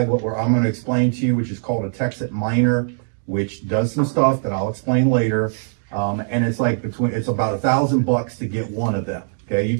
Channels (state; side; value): silent; left; digital silence